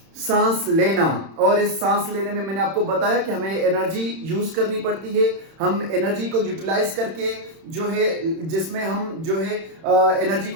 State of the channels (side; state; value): left; late; 31 ms